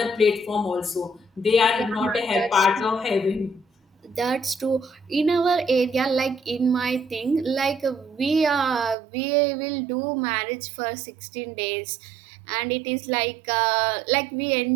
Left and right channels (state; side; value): drops out; left; at 9.0 s